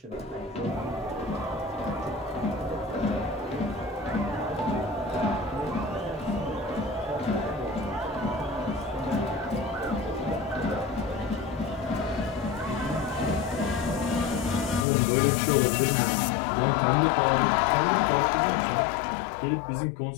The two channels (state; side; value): drops out; right; at 14.9 s